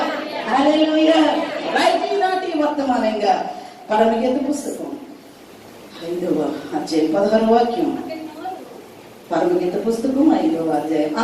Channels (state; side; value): identical; both; correlation 1.00